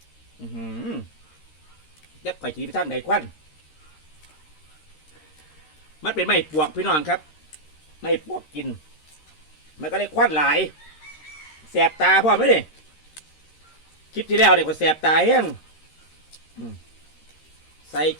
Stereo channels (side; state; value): right; late; 13 ms